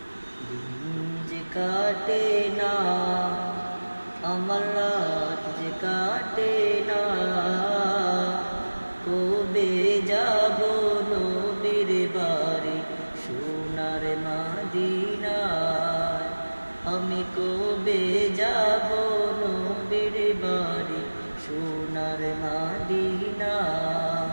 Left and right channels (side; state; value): both; inverted; correlation -1.00